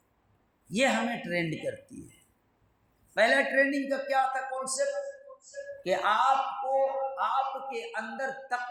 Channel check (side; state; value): both; identical; correlation 1.00